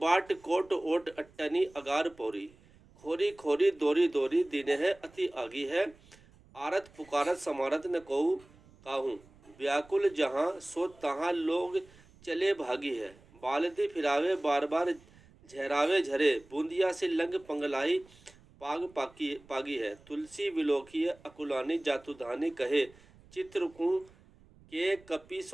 कोट ओट अट्टनी अगार पौरी खोरी खोरी दोरी दोरी दिन है अति आगी है। आरत पुकारत समारत न कहू काहू व्याकुल जहाँ सो तहाँ लोग चले भागी है। बालदी फिरावे बार बार झहरावे झरे बूंदिया से लंग पंगलाई पागी है। तुलसी विलोकी अकुलानी जातुधानी कहे चित्रकू के कपी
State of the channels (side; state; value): right; noise; rumble, 26 dB below the sound